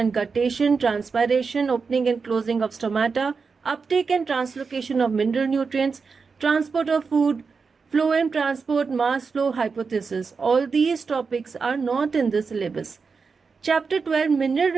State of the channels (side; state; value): left; quieter; 5.0 dB